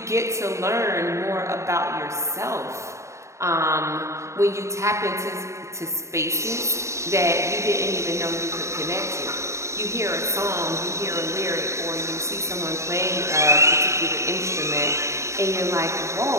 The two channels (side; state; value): left; late; 0.14 ms